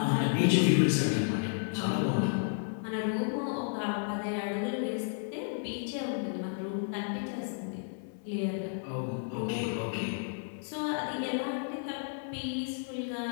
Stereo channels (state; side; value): silent; right; 56 dB below the other